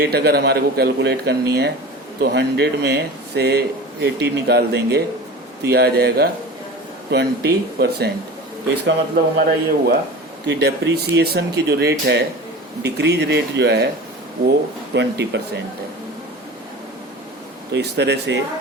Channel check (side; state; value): both; normal; correlation 0.35